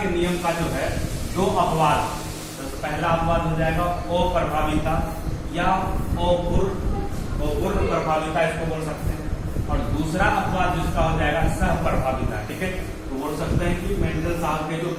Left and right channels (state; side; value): identical; both; correlation 1.00